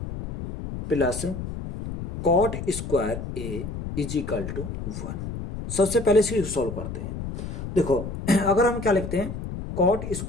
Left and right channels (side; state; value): left; noise; rumble, 7 dB below the sound